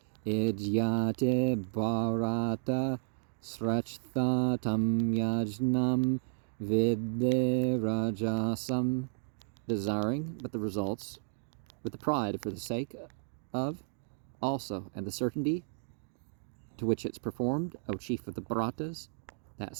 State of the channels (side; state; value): left; silent; digital silence